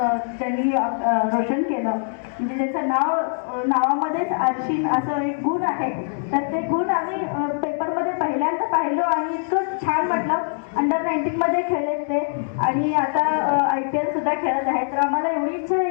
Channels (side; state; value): right; silent; 64 dB below the other